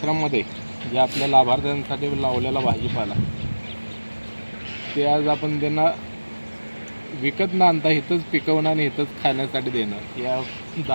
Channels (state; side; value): inverted; both; correlation -1.00